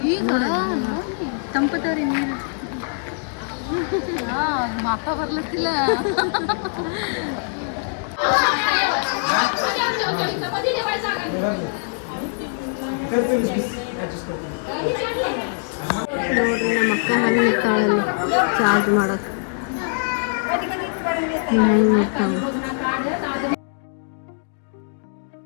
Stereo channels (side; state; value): right; silent; 64 dB below the other